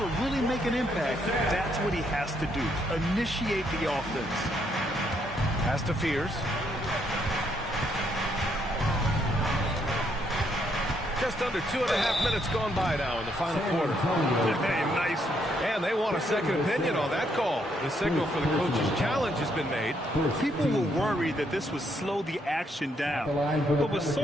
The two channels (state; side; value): normal; both; correlation 0.73